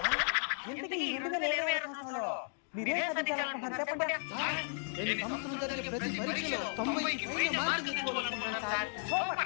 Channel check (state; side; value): silent; right; 55 dB below the other